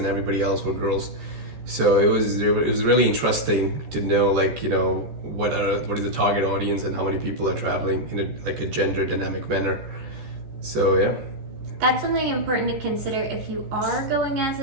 everybody else were girls. So it was really interesting to know, like, you know, what is the target audience and how many people are traveling in a gender dynamic manner. So yeah. That's something important to consider if you are going as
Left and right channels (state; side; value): late; left; 14 ms